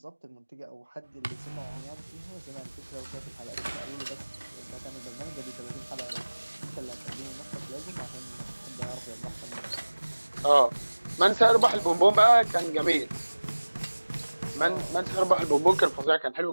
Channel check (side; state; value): both; inverted; correlation -1.00